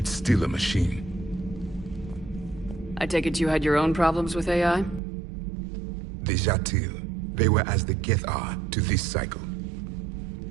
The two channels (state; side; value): drops out; left; at 5.0 s